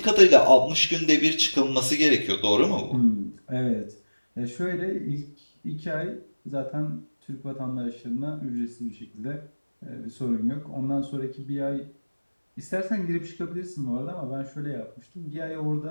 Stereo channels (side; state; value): both; inverted; correlation -1.00